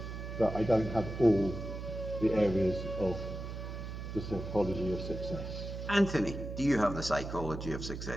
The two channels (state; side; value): noise; right; hum, 7 dB below the sound